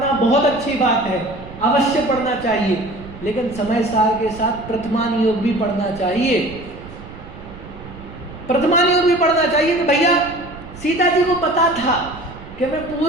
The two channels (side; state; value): right; noise; rumble, 16 dB below the sound